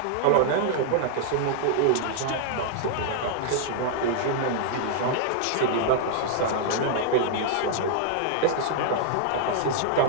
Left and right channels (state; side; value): different; both; correlation -0.01